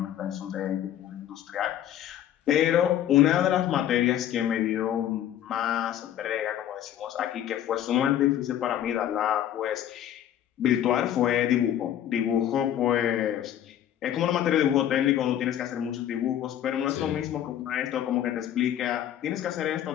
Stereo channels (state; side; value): quieter; right; 11.2 dB